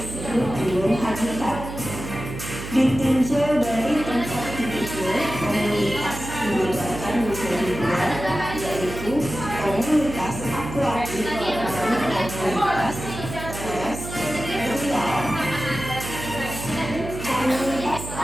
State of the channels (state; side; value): noise; right; hum, 9 dB below the sound